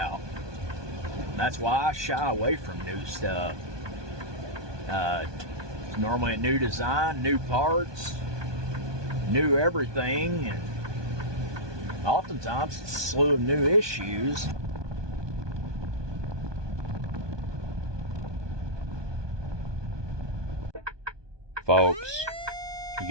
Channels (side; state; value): left; late; 1.2 ms